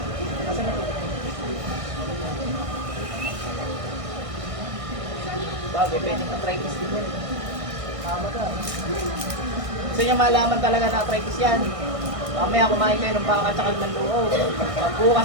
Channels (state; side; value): late; left; 1.6 ms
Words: Kasi na po. Bagay, pwede na arthritis din yan. Tama ka. Gusto niya malaman talaga na arthritis yan. Mamaya kumain kayo ng baka at saka ng luo. Pag